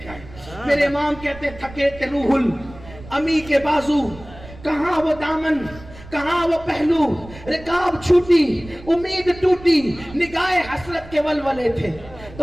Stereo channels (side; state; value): right; noise; rumble, 18 dB below the sound